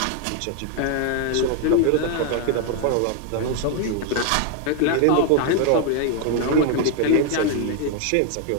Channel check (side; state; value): both; different; correlation 0.00